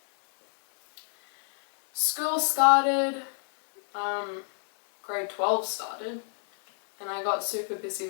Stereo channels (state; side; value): silent; right; digital silence